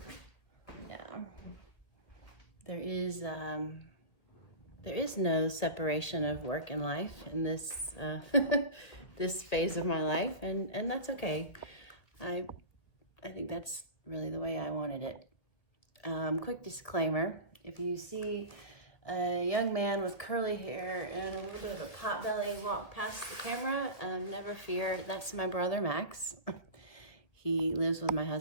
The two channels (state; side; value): late; right; 1.9 ms